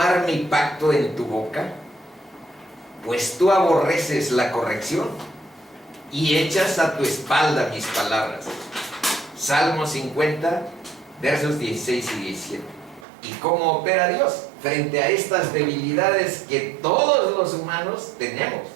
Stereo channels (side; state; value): left; drops out; at 13.1 s